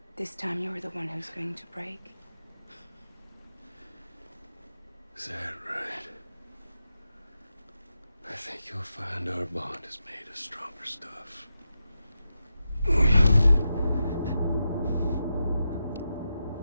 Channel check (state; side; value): inverted; both; correlation -0.88